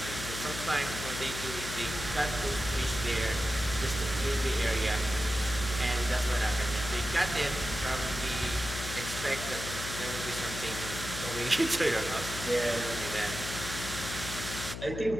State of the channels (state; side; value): noise; left; hum, 7 dB below the sound